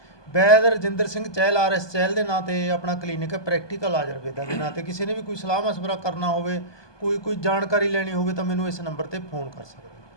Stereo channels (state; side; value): late; right; 1.2 ms